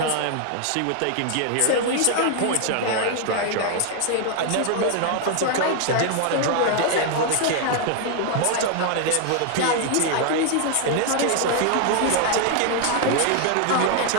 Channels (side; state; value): both; different; correlation 0.00